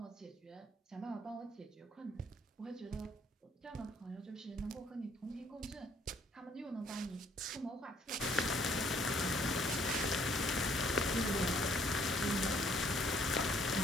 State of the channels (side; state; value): both; normal; correlation 0.64